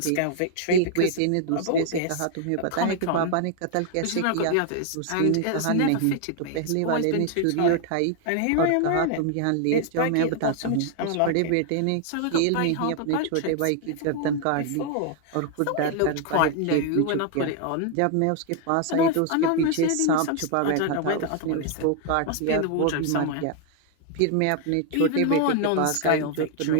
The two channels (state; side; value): different; both; correlation 0.00